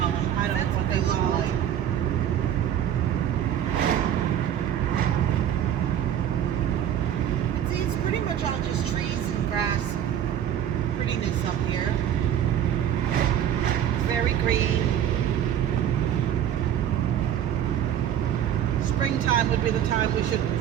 them. I don't That's know what they look called. like. But see, it's pretty much all just trees and grass. Prettiness up here. It's very green. Springtime would be the time we should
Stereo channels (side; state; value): left; quieter; 10.1 dB